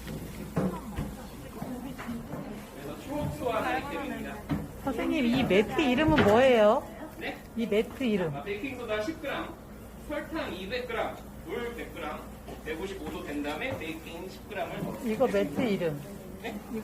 그래서 초호수와 하기 때문입니다. 선생님, 이 매트 이름은 뭐예요? 네? 이 매트 이름. 베이킹소다 10g, 설탕 200g, 물 100g, 155도 된 다음에 베이킹 10g을 넣어요. 이거 매트 이름. 네?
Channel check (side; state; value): both; identical; correlation 1.00